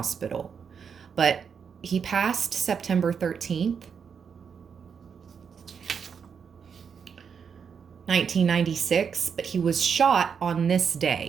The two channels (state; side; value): quieter; left; 6.7 dB